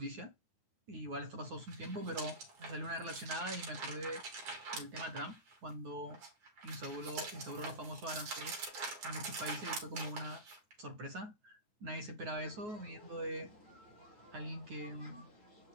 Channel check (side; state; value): left; late; 9.7 ms